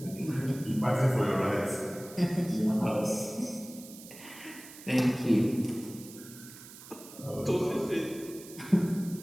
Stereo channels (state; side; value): noise; right; hiss, 17 dB below the sound